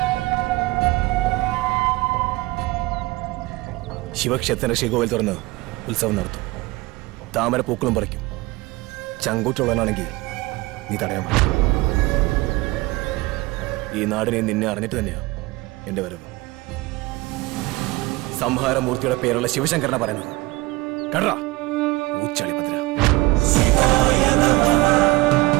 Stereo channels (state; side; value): quieter; left; 21.5 dB